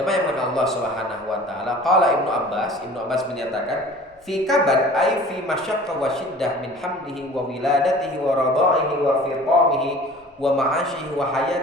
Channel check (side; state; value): both; normal; correlation 0.45